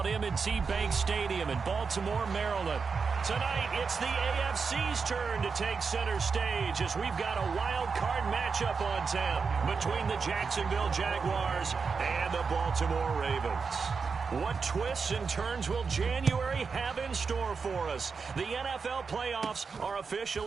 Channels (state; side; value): quieter; left; 5.2 dB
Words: M&T Bank Stadium in Baltimore, Maryland. Tonight, it's the AFC's turn to take center stage as we've got a wild card matchup on tap between the Jacksonville Jaguars and the Baltimore Ravens. What twists and turns will January have in store for us? The NFL playoffs are